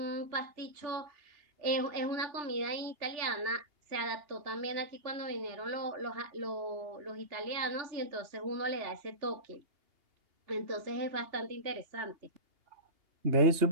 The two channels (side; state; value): left; late; 2.8 ms